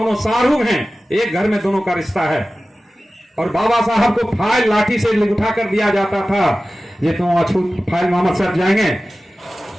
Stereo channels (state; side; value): normal; both; correlation 0.96